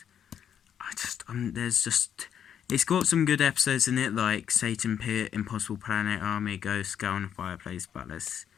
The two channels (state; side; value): quieter; right; 8.8 dB